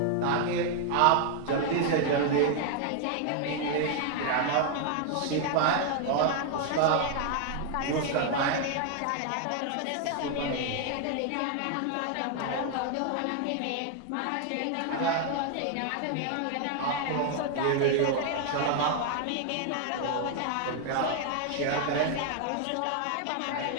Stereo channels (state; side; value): different; both; correlation 0.00